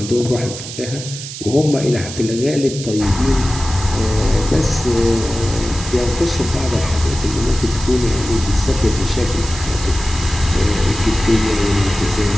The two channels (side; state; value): right; noise; hiss, 10 dB below the sound